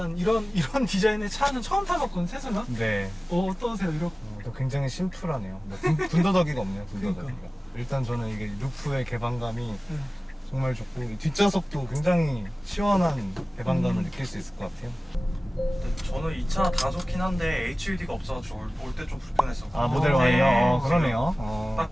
이런 디자인의 차는 처음 타봤거든요, 테슬라? 네. 어떠세요? 이렇게. 또 굉장히 심플하네요. 뭐 군더더기가 없네요, 군더더기가. 그러니까. 일단 저는 이게 루프의 개방감이 네. 정말 좋고, 이 뒷좌석도 굉장히 시원한 개방감을 느낄 수 있을 것 같아요. 근데 저는 이 차 다 좋긴 한데 HUD가 없어가지고 올 때 좀 불편했었고. 아, 모델 어, Y요? 네. 그러네요.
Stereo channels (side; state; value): both; normal; correlation 0.97